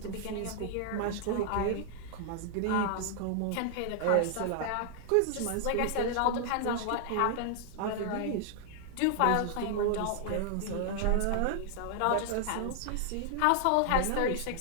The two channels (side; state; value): both; different; correlation 0.00